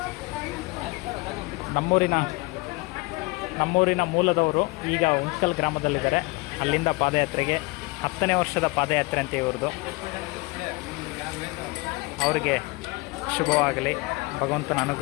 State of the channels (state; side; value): quieter; right; 24.8 dB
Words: ನಮ್ಮೂರಿನ ಮೂಲದವರು ಈಗ ಉಂಚ್ಕಲ್ ಗ್ರಾಮದಲ್ಲಿದ್ದಾರೆ. ಅಲ್ಲಿಂದ ಪಾದಯಾತ್ರೆಗೆ 10ನೇ ವರ್ಷದ ಪಾದಯಾತ್ರೆ ಅಂತ ಇವ್ರದ್ದು. ಅವರಿಗೆ ಶುಭವಾಗಲಿ, ಭಗವಂತನ